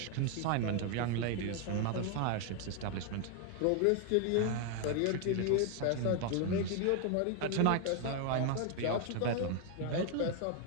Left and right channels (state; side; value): different; both; correlation 0.00